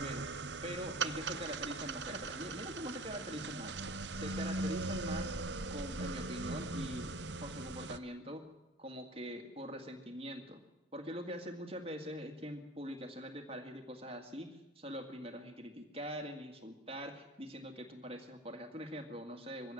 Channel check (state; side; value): normal; both; correlation 0.41